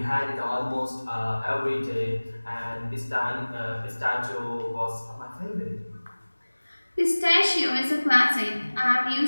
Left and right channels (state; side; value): inverted; both; correlation -1.00